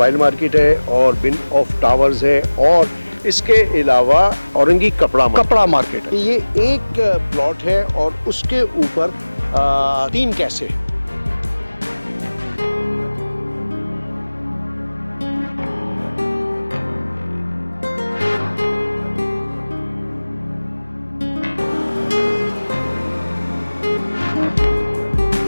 मार्केट है और बिन ऑफ टावर्स है और इसके अलावा औरंगी कपड़ा मार्केट है। ये एक प्लॉट है और उसके ऊपर 3 कैसे।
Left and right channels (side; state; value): both; inverted; correlation -1.00